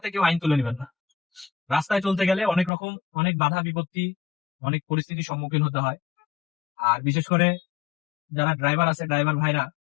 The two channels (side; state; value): right; drops out; at 2.7 s